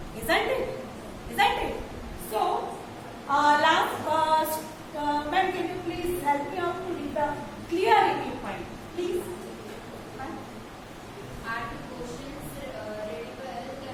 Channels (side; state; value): both; identical; correlation 1.00